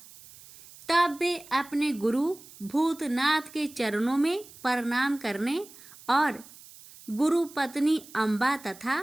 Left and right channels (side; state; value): right; noise; hiss, 20 dB below the sound